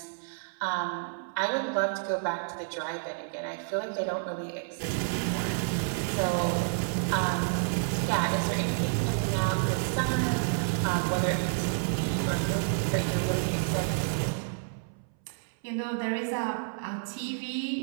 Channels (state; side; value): silent; left; 58 dB below the other